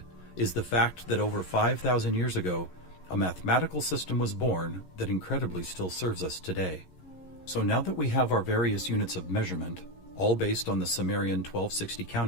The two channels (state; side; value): late; right; 11 ms